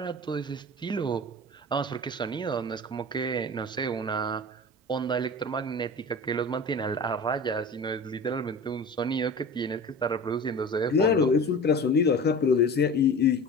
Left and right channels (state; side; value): normal; both; correlation 0.35